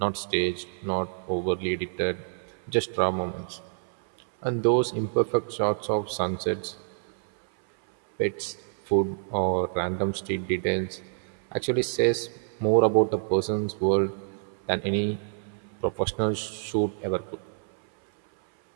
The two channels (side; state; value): left; silent; 60 dB below the other